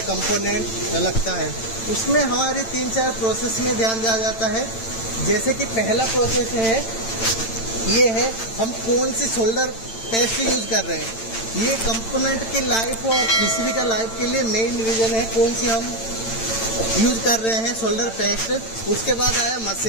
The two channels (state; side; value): late; right; 8.9 ms